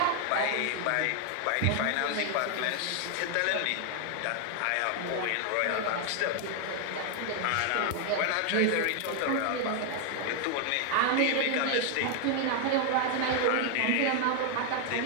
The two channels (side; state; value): both; different; correlation 0.00